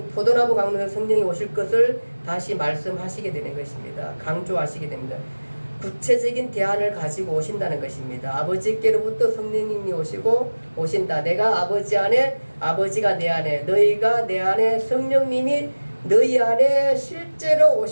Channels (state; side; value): inverted; both; correlation -1.00